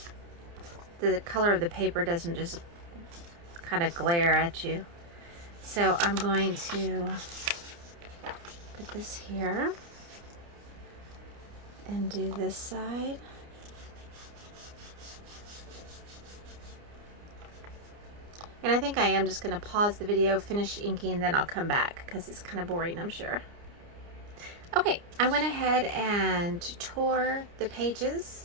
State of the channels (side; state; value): left; late; 29 ms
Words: the color of the paper doesn't just kind of glare at you. So I'm going to put this here and do this side. And I think I am just going to pause the video, finish inking, and then I'll come back because it's kind of boring, I'm sure. Okay, I went ahead and tore the